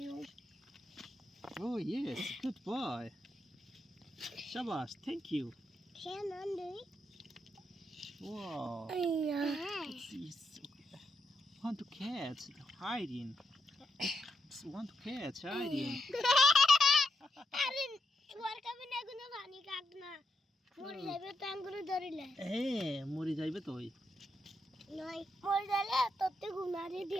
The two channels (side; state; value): both; normal; correlation 0.81